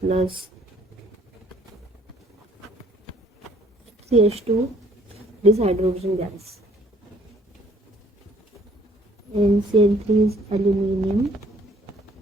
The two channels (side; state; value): both; normal; correlation 0.61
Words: CH2, this hydrogen gas. And Cl3 is aluminum